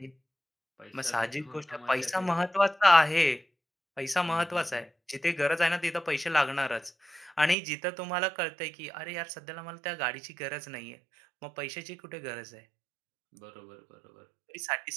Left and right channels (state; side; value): drops out; left; at 7.6 s